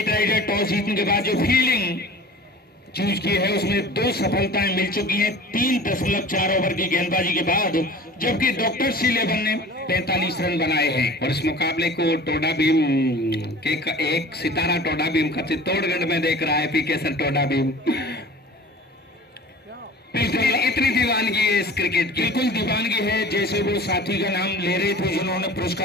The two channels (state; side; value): normal; both; correlation 0.40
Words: राइडर टॉस जीतने के बाद जो फील्डिंग चूज की है उसमें 2 सफलताएं मिल चुकी हैं 3.4 ओवर की गेंदबाजी के बाद, जबकि डॉक्टर C11 ने 45 रन बनाए हैं। और इस मुकाबले को टोडा भीम के एक सितारा टोडा भीम का चित्तौड़गढ़ में देख रहा है, पीके सर टोडा भीम। इतनी दीवानगी है इस क्रिकेट की, बिल्कुल दीवानगी है। जैसे वो साथी का नाम ले रहे थे जिन्होंने